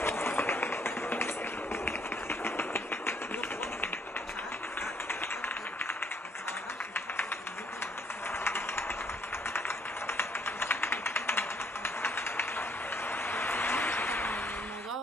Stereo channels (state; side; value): normal; both; correlation 0.66